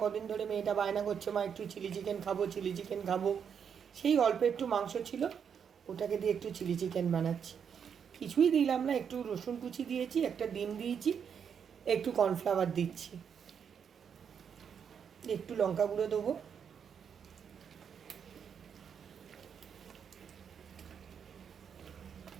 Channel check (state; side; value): quieter; left; 7.4 dB